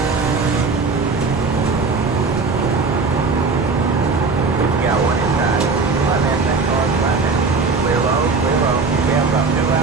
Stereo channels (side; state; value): left; quieter; 4.3 dB